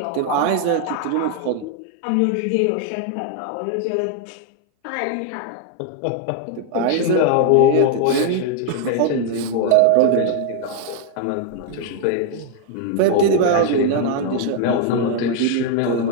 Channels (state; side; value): different; both; correlation 0.00